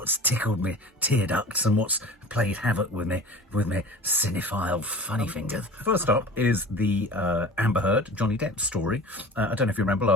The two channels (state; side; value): normal; both; correlation 0.38